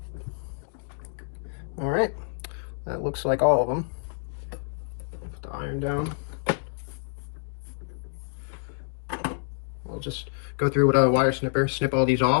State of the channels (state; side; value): silent; right; digital silence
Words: All right. That looks like all of them. Put the iron down. I'll just go through with a wire snipper, snip all these